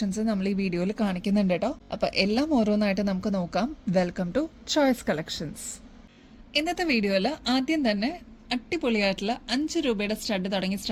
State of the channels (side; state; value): both; identical; correlation 1.00